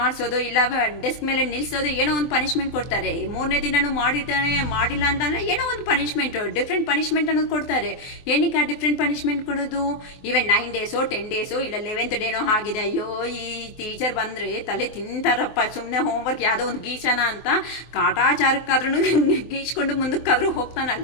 ಮಾಡಿಸೋದು ಇಲ್ಲ ಡೆಸ್ಕ್ ಮೇಲೆ ನಿಲ್ಲಿಸೋದು, ಏನೋ ಒಂದು ಪನಿಷ್ಮೆಂಟ್ ಕೊಡ್ತಾರೆ. 3ನೇ ದಿನನೂ ಮಾಡಿಲ್ಲ ಅಂತಂದ್ರೆ ಏನೋ ಒಂದು ಪನಿಷ್ಮೆಂಟ್, ಡಿಫ್ರೆಂಟ್ ಪನಿಷ್ಮೆಂಟ್ ಅನ್ನೋದು ಕೊಡ್ತಾರೆ. ಏನಕ್ಕೆ ಆ ಡಿಫ್ರೆಂಟ್ ಪನಿಷ್ಮೆಂಟ್ ಕೊಡೋದು? ಈವನ್ 9 ಡೇಸೋ 10 ಡೇಸೋ ಇಲ್ಲ 11th ಡೇನೋ ಆಗಿದೆ. ಅಯ್ಯೋ ಈ ಟೀಚರ್ ಬಂದ್ರೆ ತಲೆ ತಿಂತಾರಪ್ಪ, ಸುಮ್ಮನೆ ಹೋಮ್ವರ್ಕ್ ಯಾವುದೋ ಒಂದು ಗೀಚನ ಅಂತ ಕಾಟಾಚಾರಕ್ಕಾದ್ರೂ ಗೀಚ್ಕೊಂಡು ಮುಂದಕ್ಕಾದ್ರೂ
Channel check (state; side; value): late; right; 23 ms